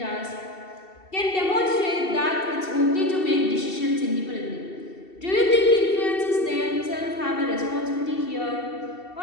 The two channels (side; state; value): right; late; 2.7 ms